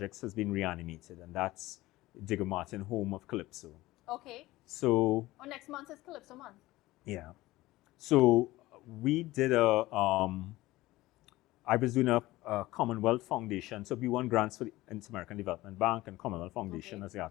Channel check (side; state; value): right; quieter; 18.2 dB